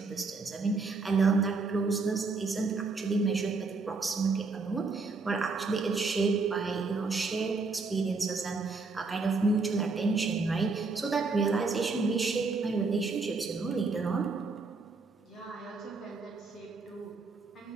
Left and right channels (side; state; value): left; quieter; 4.1 dB